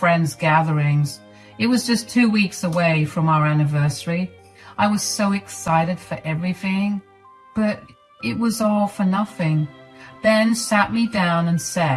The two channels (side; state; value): both; identical; correlation 1.00